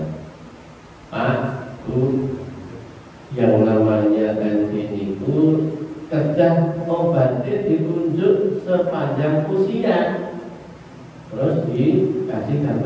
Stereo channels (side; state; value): both; identical; correlation 1.00